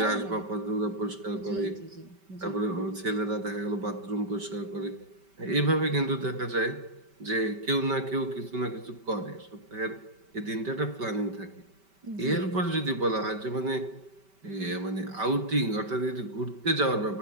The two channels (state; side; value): late; left; 5.2 ms